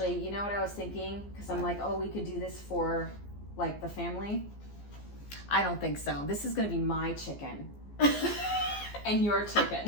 you know what I was thinking? Because I'm like, oh, we could do this for like the family. I don't think so. This is gonna be my chicken and your chicken.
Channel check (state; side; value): late; right; 14 ms